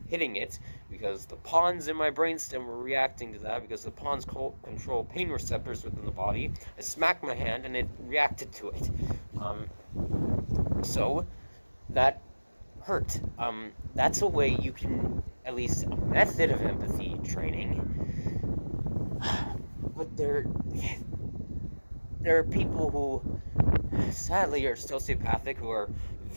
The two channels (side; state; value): both; inverted; correlation -1.00